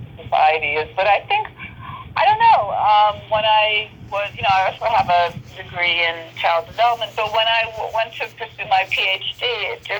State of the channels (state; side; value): identical; both; correlation 1.00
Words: society is. But I think, I don't know, when I was, you know, I also have a degree in child development, but when I went to pursue my PhD, it